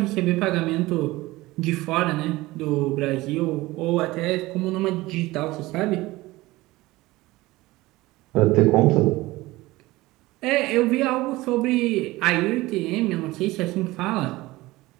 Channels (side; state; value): left; quieter; 19.4 dB